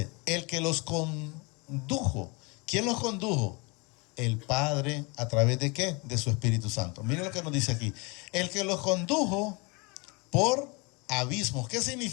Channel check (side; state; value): right; quieter; 29.0 dB